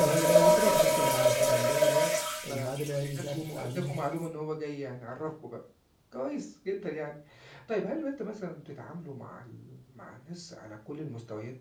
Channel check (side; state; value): both; identical; correlation 1.00